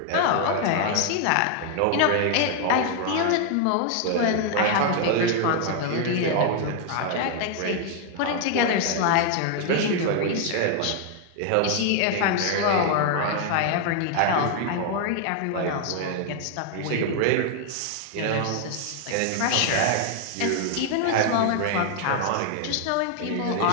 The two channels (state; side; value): different; both; correlation 0.00